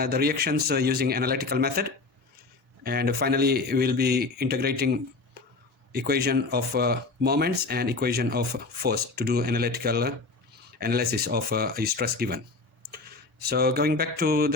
reactions using analytical method, and finally we'll be integrating equation of moments and equation of force to do analytical analysis of a stress given. So going back to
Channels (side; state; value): right; quieter; 3.7 dB